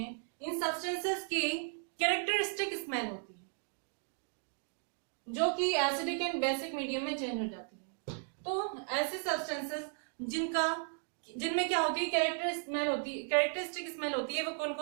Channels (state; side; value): silent; left; 54 dB below the other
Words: इन सब्सटेंसेस की कैरेक्टरिस्टिक स्मेल होती है जो कि एसिडिक एंड बेसिक मीडियम में चेंज हो जाती है। तो ऐसे सब्सटेंसेस जिनमें क्या होती है? कैरेक्टरिस्टिक स्मेल होती है। वो कौन